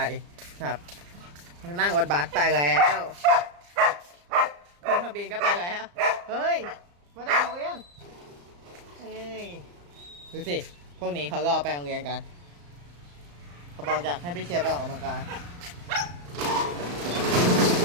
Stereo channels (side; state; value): left; late; 34 ms